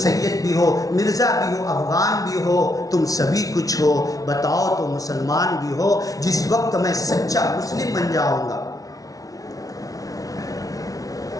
سید بھی ہو, مرزا بھی ہو, افغان بھی ہو, تم سبھی کچھ ہو, بتاؤ تو مسلمان بھی ہو. جس وقت میں سچا مسلم بن جاؤں گا,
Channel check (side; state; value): right; late; 0.18 ms